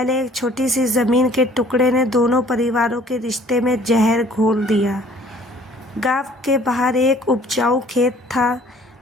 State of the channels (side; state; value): both; normal; correlation 0.55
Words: एक छोटी सी ज़मीन के टुकड़े ने दोनों परिवारों के रिश्ते में जहर घोल दिया। गांव के बाहर एक उपजाऊ खेत था